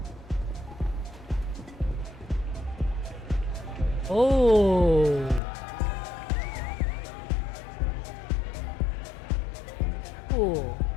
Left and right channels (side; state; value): right; drops out; at 5.4 s